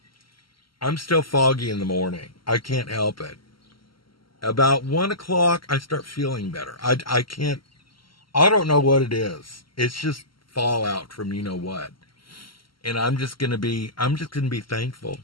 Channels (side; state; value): right; late; 0.74 ms